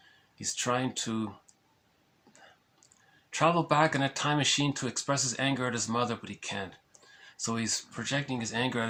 He's trying to travel back in a time machine to express his anger at his mother, but he can't. So he's projecting his anger at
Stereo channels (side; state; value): both; identical; correlation 1.00